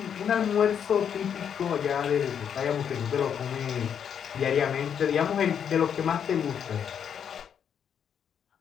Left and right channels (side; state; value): right; quieter; 8.1 dB